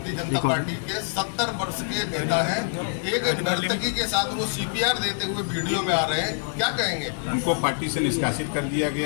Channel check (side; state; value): right; silent; digital silence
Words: जनता पार्टी के 70 वर्ष के नेता हैं। एक नर्तकी के साथ वो CPR देते हुए वीडियो में आ रहे हैं, क्या कहेंगे? उनको पार्टी से निष्कासित कर दिया